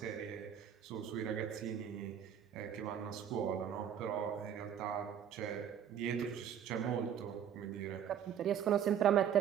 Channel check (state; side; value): quieter; left; 9.0 dB